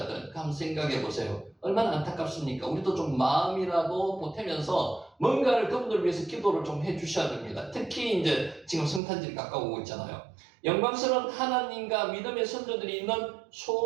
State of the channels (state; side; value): drops out; left; at 9.0 s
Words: 한번 생각해 보세요. 얼마나 안타깝습니까? 우리도 좀 마음이라도 보태면서 뭔가를 그분들 위해서 기도를 좀 해주셔야 됩니다. 특히 이제 지금 성탄절이 가까워오고 있잖아요. 영광스러운 하나님과 믿음의 선조들이 있는